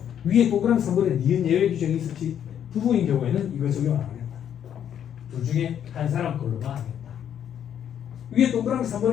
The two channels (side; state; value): right; quieter; 9.4 dB